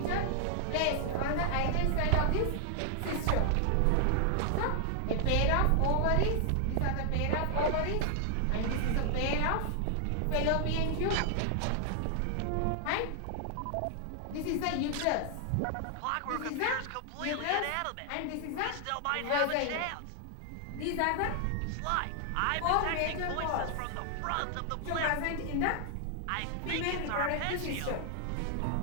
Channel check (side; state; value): both; different; correlation 0.00